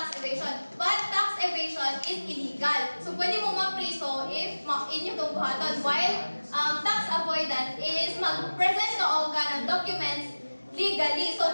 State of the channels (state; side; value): inverted; both; correlation -1.00